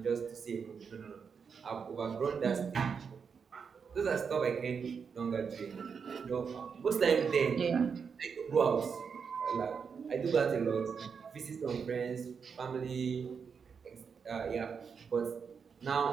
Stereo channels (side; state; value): left; quieter; 6.2 dB